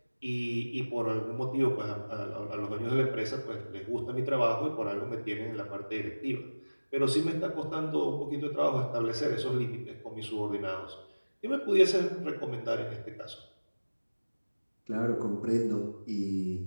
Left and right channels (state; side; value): inverted; both; correlation -1.00